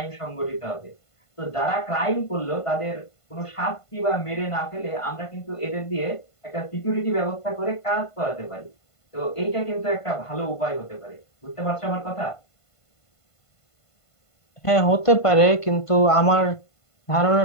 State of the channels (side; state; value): right; late; 1.5 ms